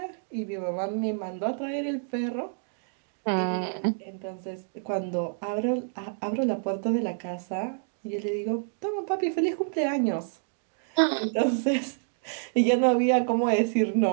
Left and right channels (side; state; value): left; silent; digital silence